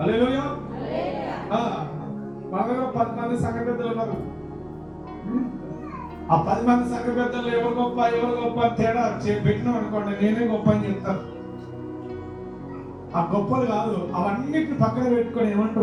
మా దగ్గర 10 మంది సంఘ పెద్దలు ఉన్నారు. ఆ 10 మంది సంఘ పెద్దలు ఎవరు గొప్ప అని తేడా పెట్టినాం అనుకోండి, నేనే గొప్ప అని చెప్తాను. ఆ గొప్పలు కాదు, అవన్నిటిని పక్కన పెట్టుకొని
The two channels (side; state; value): both; identical; correlation 1.00